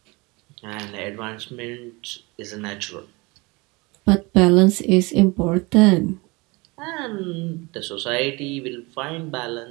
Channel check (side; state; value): left; quieter; 25.4 dB